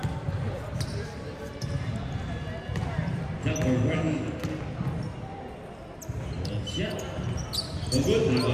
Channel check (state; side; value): identical; both; correlation 1.00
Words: Ready. Yeah. The good